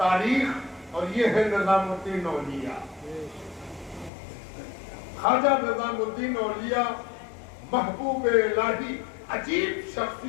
اور یہ ہے نظام الدین اولیاء. خواجہ نظام الدین اولیاء محبوب الہی عجیب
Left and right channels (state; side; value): drops out; right; at 4.1 s